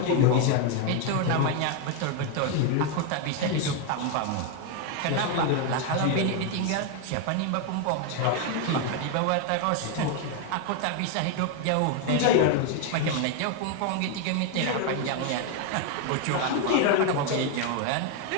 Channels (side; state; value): both; different; correlation 0.01